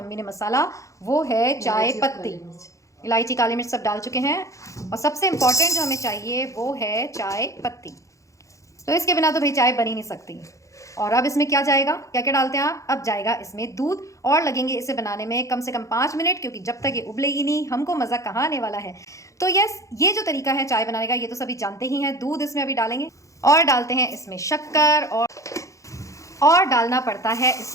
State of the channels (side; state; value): right; late; 0.15 ms